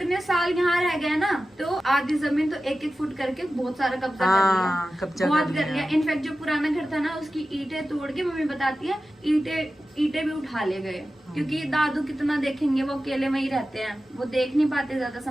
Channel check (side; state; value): both; normal; correlation 0.94